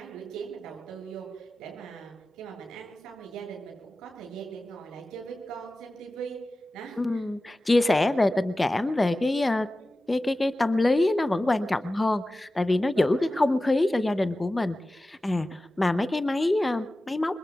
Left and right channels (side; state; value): both; normal; correlation 0.95